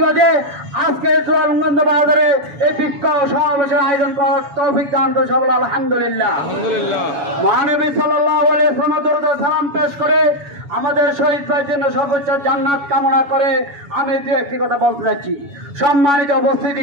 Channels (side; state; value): left; late; 7.1 ms